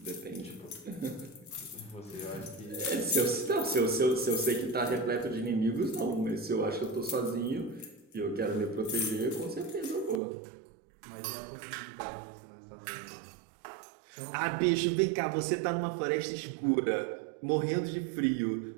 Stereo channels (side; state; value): left; drops out; at 10.2 s